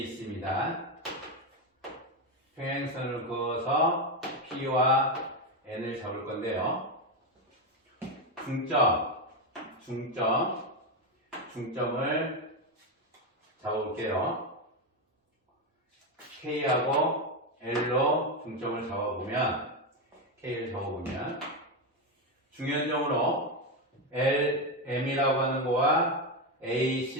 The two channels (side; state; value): both; normal; correlation 0.09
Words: 있습니다. 평행선을 그어서 P와 N을 잡을 건데요. 중점을 잡아볼게요. K하고 L로 중점을 잡아보면, K를 잡아보면, 중연점으로 LM이라고 하는 거와